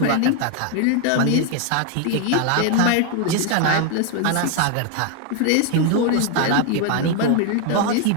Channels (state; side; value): different; both; correlation 0.01